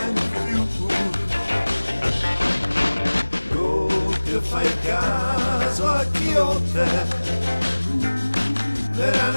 più. Coppia fai caso a chi o te, era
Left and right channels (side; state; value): both; inverted; correlation -1.00